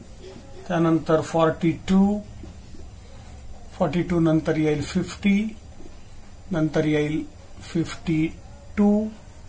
त्यानंतर 42 नंतर येईल 50, नंतर येईल 52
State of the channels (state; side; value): identical; both; correlation 1.00